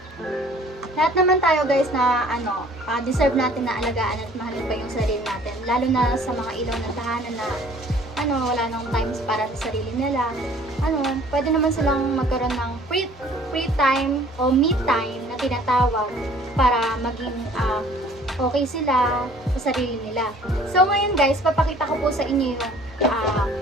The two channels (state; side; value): normal; both; correlation 0.53